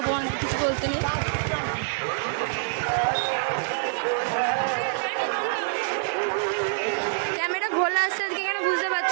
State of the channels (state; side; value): silent; left; digital silence